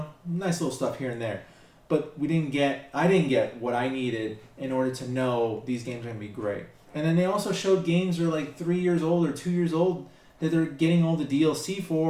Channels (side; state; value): both; identical; correlation 1.00